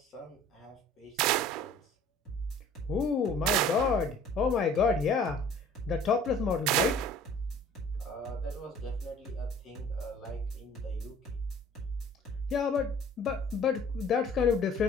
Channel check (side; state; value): both; normal; correlation 0.50